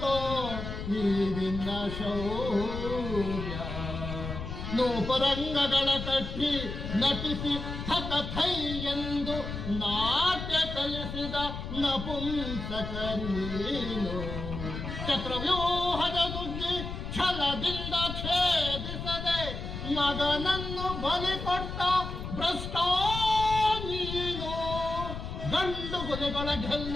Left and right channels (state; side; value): noise; left; rumble, 6 dB below the sound